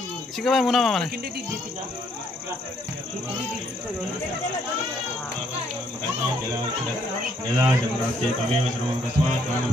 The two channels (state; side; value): normal; both; correlation 0.69